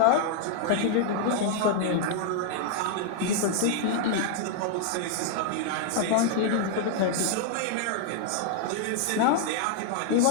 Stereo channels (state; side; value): different; both; correlation 0.00